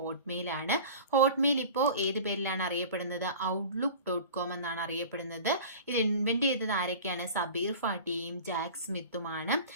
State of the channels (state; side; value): inverted; both; correlation -0.38